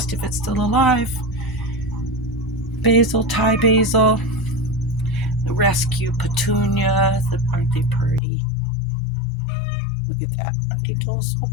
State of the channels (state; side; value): drops out; right; at 8.2 s